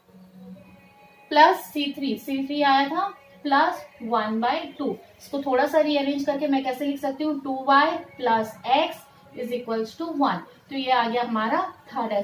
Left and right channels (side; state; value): both; identical; correlation 1.00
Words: प्लस C3 आया था प्लस 1/2। इसको थोड़ा सा रीअरेंज करके मैं कैसे लिख सकती हूँ 2y plus x is equals to 1। तो ये आ गया हमारा थर्ड